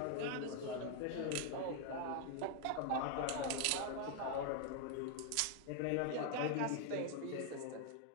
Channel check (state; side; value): different; both; correlation 0.00